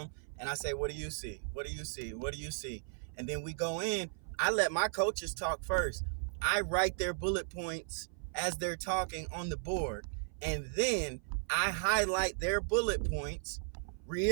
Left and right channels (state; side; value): silent; left; 54 dB below the other